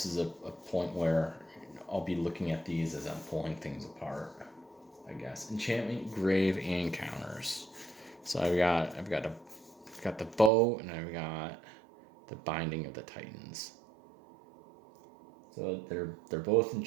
a point where I'll be looking at these as I'm pulling things apart, I guess. Enchantment, Grave, and counters. So I've got the bow, and I've got the Binding of the Titans. So they're both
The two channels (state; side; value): drops out; left; at 10.5 s